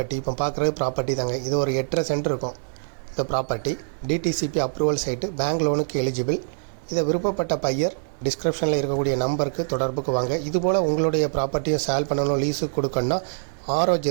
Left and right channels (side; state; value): left; silent; digital silence